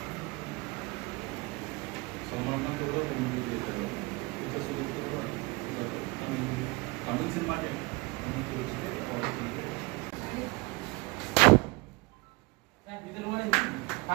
సల్మాన్ కూడా movie చేశారు. Tamil cinema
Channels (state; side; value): quieter; left; 24.7 dB